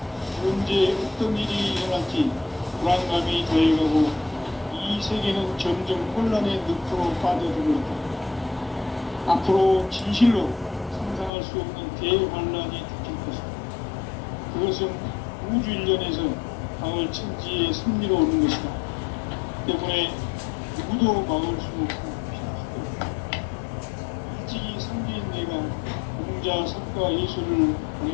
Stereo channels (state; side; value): drops out; right; at 11.3 s